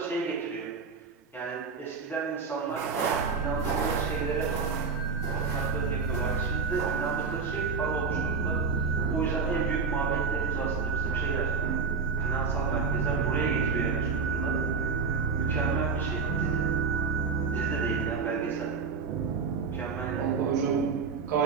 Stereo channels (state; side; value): quieter; left; 5.1 dB